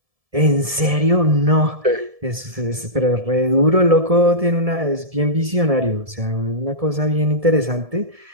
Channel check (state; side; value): late; left; 1.7 ms